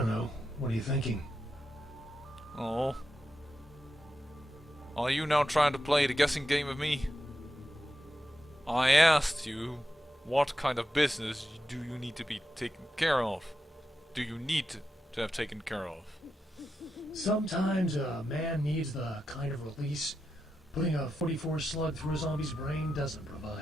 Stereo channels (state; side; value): normal; both; correlation 0.88